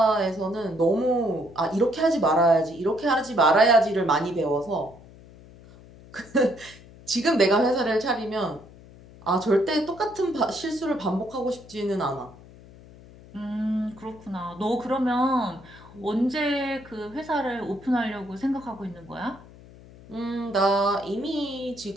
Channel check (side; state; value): left; noise; hum, 21 dB below the sound